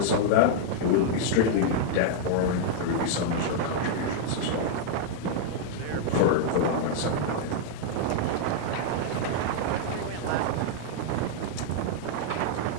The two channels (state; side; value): different; both; correlation -0.01